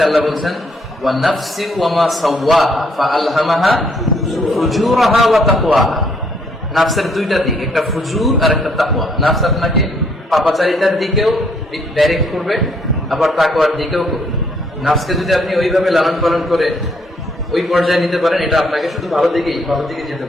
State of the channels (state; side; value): normal; both; correlation 0.68